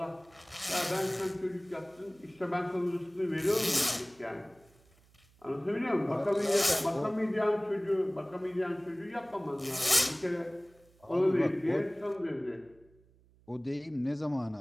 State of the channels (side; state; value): right; noise; hum, 30 dB below the sound